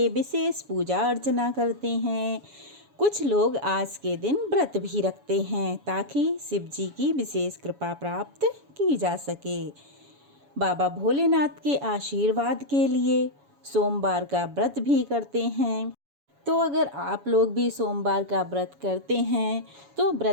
विशेष पूजा अर्चना करते हैं। कुछ लोग आज के दिन व्रत भी रखते हैं ताकि शिव जी की विशेष कृपा प्राप्त की जा सके। बाबा भोलेनाथ के आशीर्वाद के लिए सोमवार का व्रत भी करते हैं। तो अगर आप लोग भी सोमवार का व्रत करते हैं तो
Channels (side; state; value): left; late; 7.1 ms